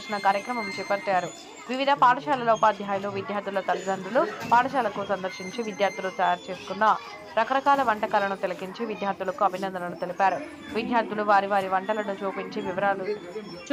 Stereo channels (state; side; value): identical; both; correlation 1.00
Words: కార్యక్రమం చేపట్టారు. వివిధ పాఠశాలల ఉపాధ్యాయులు, విద్యార్థుల తల్లిదండ్రులు పాఠశాలకు సందర్శించి విద్యార్థులు తయారు చేసుకున్న రకరకాల వంటకాలను తిలకించి విద్యార్థులకు అభినందనలు తెలిపారు. విద్యార్థులు వారి వారి వంటలను